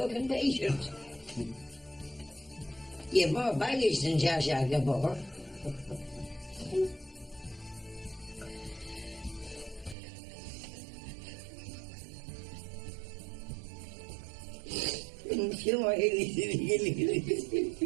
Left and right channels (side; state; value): left; drops out; at 10.0 s